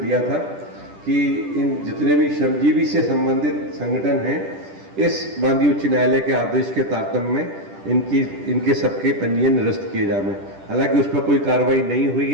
था कि इन जितने भी श्रमजीवी से संबंधित संगठन हैं, इस माननीय उच्च न्यायालय के आदेश के तारतम्य में इनके सबके पंजीयन निरस्त किए जाए। हालांकि उस पर कोई कार्रवाई नहीं हुई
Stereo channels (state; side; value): late; left; 10 ms